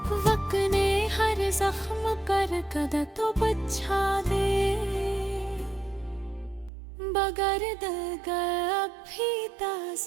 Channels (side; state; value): left; drops out; at 6.7 s